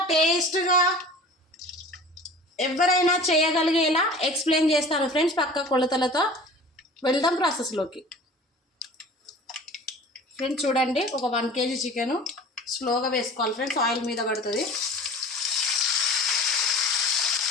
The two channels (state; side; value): normal; both; correlation 0.41